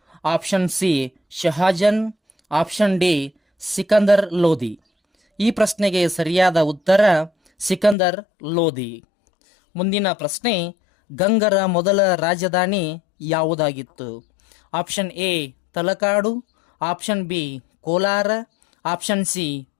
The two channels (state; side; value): drops out; right; at 8.0 s